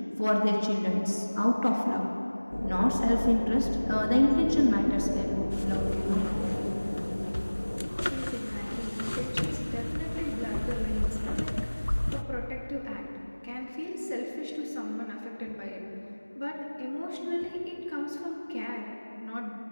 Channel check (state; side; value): inverted; both; correlation -1.00